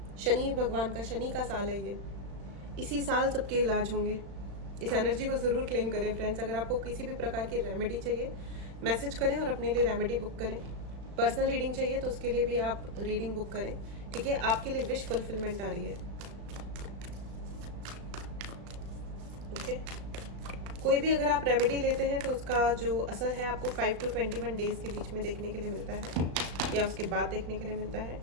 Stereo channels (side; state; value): left; late; 36 ms